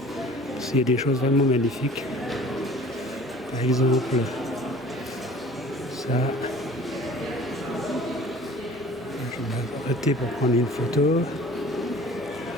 s'il y a des choses vraiment magnifiques. Par exemple, ça. Je vais m'arrêter pour prendre une photo.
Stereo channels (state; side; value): normal; both; correlation 0.47